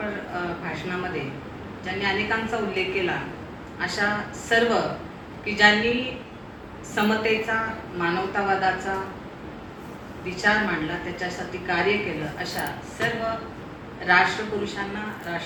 भाषणामध्ये ज्यांनी अनेकांचा उल्लेख केला, अशा सर्व की ज्यांनी समतेचा, मानवतावादाचा विचार मांडला, त्याच्यासाठी कार्य केलं, अशा सर्व राष्ट्रपुरुषांना,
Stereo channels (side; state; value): both; identical; correlation 1.00